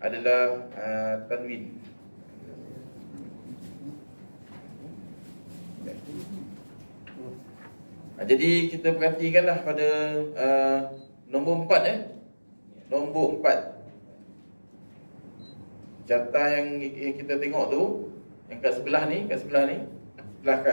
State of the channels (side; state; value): both; inverted; correlation -1.00